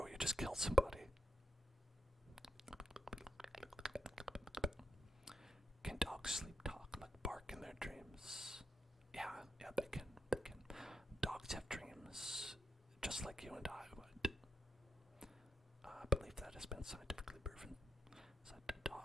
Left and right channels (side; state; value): both; normal; correlation 0.84